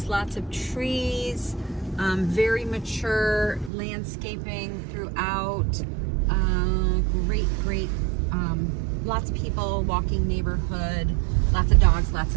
lots of trees. Very mature landscaping throughout. Great. Lots of people, walking neighborhood, lots of dogs, lots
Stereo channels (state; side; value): drops out; left; at 3.7 s